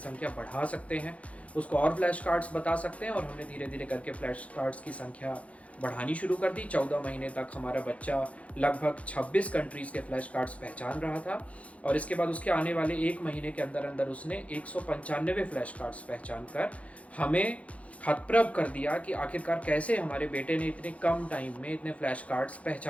बढ़ा सकते हैं, उसको और फ्लैश कार्ड्स बता सकते हैं। और हमने धीरे धीरे करके फ्लैश कार्ड्स की संख्या बढ़ानी शुरू कर दी। 14 महीने तक हमारा बच्चा लगभग 26 कंट्रीज़ के फ्लैश कार्ड्स पहचान रहा था और इसके बाद उसके आने वाले 1 महीने के अंदर अंदर उसने 195 फ्लैश कार्ड्स पहचान कर हमें हतप्रभ कर दिया कि आखिरकार कैसे हमारे बेटे ने इतने कम टाइम में इतने फ्लैश कार्ड्स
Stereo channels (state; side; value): late; right; 0.065 ms